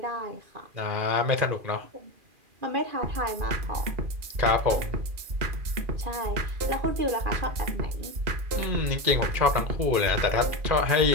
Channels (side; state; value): left; late; 2.4 ms